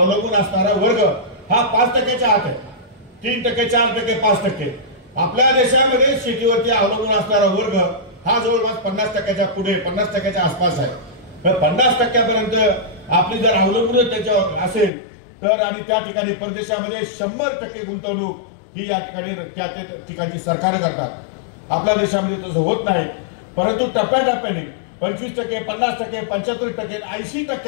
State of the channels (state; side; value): drops out; right; at 14.9 s